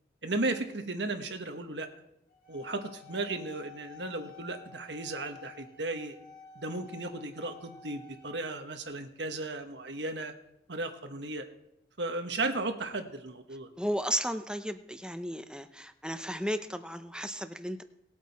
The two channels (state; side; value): normal; both; correlation 0.28